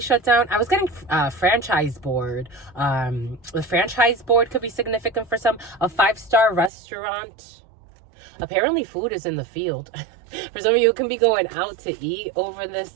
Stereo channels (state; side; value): drops out; left; at 6.7 s